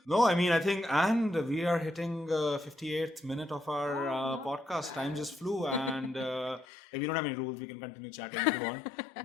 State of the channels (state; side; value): drops out; right; at 6.7 s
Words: No, I mean, I think, and we are hitting 58th minute of our podcast. Time just flew, and we don't have any rules. We can continue chatting if you want.